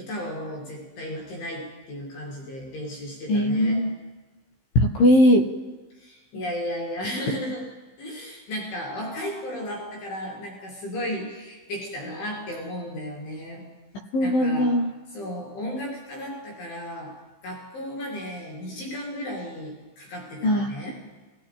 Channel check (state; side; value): late; right; 15 ms